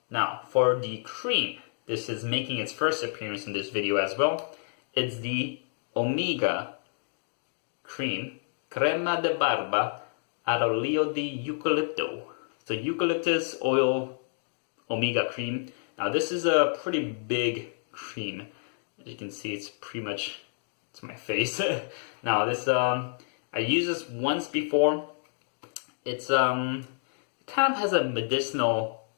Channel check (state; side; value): silent; right; digital silence